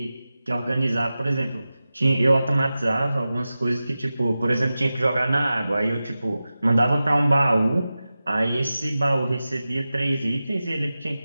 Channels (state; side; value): inverted; both; correlation -0.94